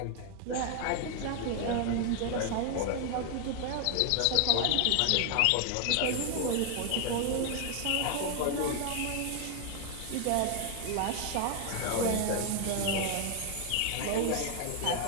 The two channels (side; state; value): both; different; correlation 0.00